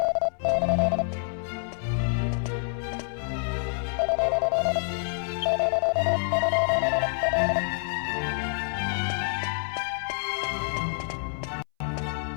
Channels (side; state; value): right; silent; 59 dB below the other